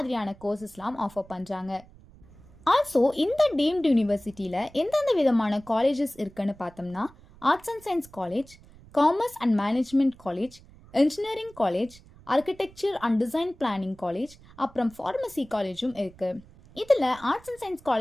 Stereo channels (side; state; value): right; noise; rumble, 23 dB below the sound